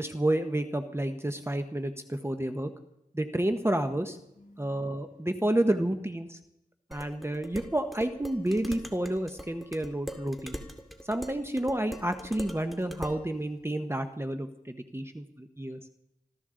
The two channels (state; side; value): normal; both; correlation 0.92